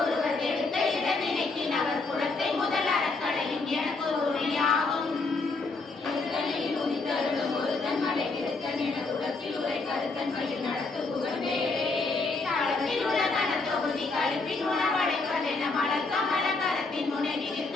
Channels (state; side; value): quieter; right; 3.7 dB